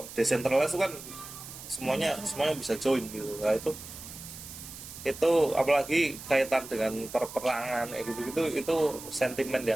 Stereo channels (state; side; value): noise; right; hiss, 13 dB below the sound